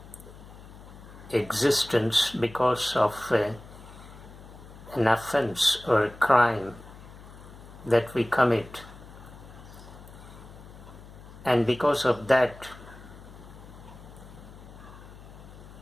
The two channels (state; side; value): noise; left; hum, 18 dB below the sound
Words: existence because of an offense or a crime that we commit. And because of that,